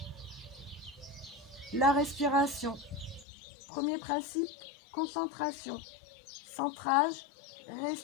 La respiration. Premier principe, concentration. Centrage,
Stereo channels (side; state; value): right; drops out; at 3.2 s